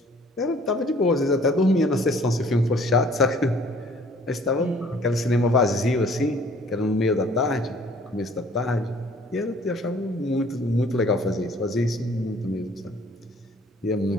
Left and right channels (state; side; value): normal; both; correlation 0.55